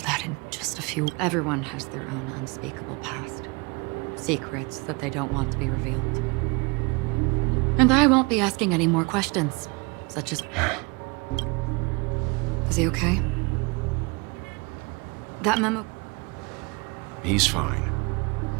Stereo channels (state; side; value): quieter; left; 28.2 dB